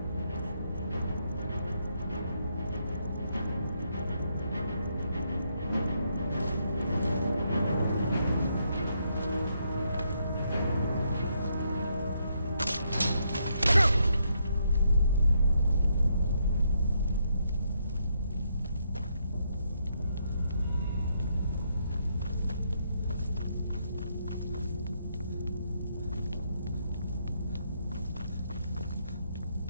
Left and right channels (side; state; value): both; inverted; correlation -0.76